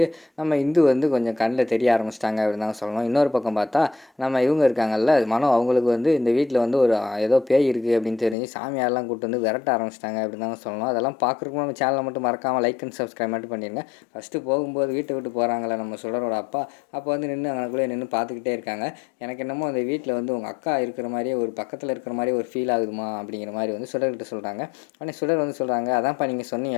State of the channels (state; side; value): drops out; right; at 8.3 s